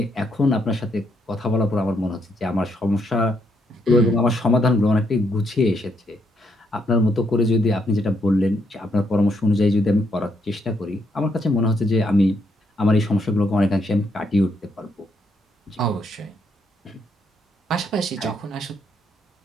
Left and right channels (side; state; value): both; normal; correlation 0.75